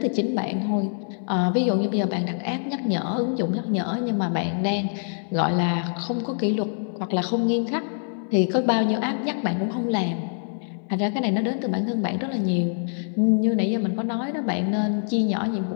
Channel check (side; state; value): right; silent; digital silence